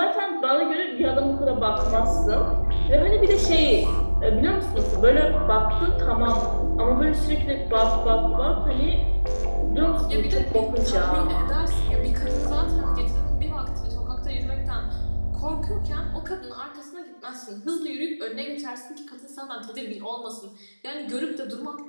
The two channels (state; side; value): inverted; both; correlation -1.00